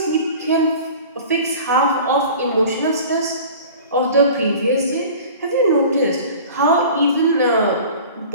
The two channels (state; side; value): inverted; both; correlation -0.41